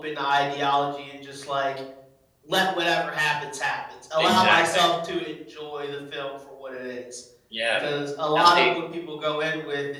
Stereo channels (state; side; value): identical; both; correlation 1.00